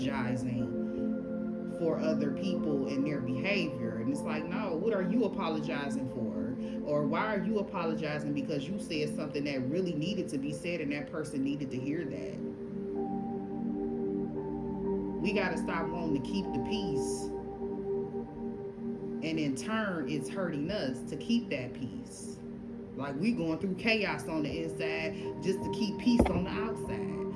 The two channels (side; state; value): both; identical; correlation 1.00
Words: for other people and their behavior. And it's like, no, what are you apologizing for? Or why are you apologizing because you said something that really needed to be said and that person needed to hear that? We got to stop wanting to keep the peace. And in turn, it's hurting us to keep that peace. Like we going through chaos on the inside just to keep peace on the outside.